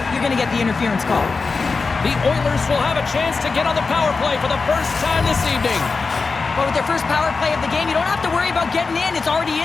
you're gonna get the interference call. The Oilers will have a chance to get on the power play for the first time this evening. But with their first power play of the game, you don't have to worry about getting in. It's already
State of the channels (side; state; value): right; quieter; 4.4 dB